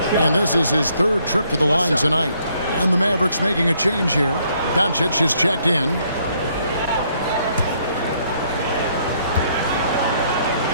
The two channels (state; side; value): inverted; both; correlation -0.68